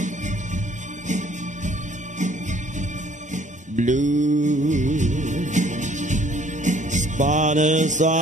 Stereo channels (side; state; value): both; normal; correlation 0.58